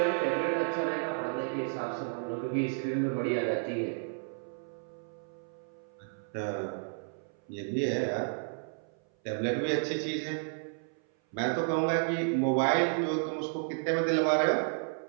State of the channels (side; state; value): left; silent; 56 dB below the other